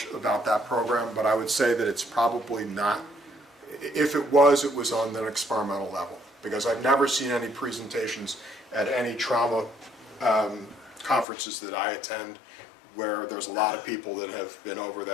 about that program, but I would say that it's probably not. If it was on an experimental level, because I've never seen any presentations at any trauma conferences that I attend where there's a lot of people that have been over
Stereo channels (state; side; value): drops out; right; at 11.2 s